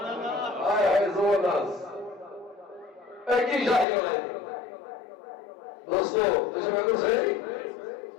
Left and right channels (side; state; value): right; drops out; at 3.9 s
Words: ہائے ہائے زور ناز ایک ہی شاہی لڑائی دوستو تو شب اگر